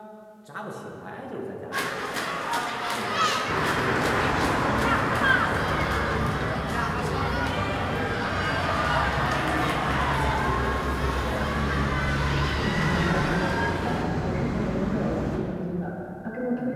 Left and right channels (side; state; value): both; identical; correlation 1.00